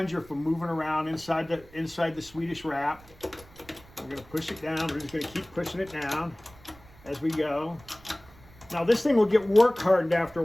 from moving around inside the Swedish wrap. We're going to push it down. We're just going to keep pushing it down as we go. Now this thing will get work hardened after a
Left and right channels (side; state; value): right; noise; rumble, 23 dB below the sound